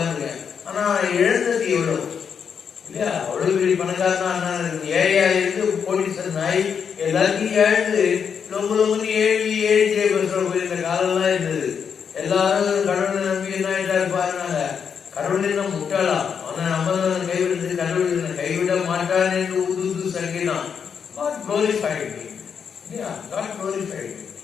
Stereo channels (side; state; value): right; quieter; 6.9 dB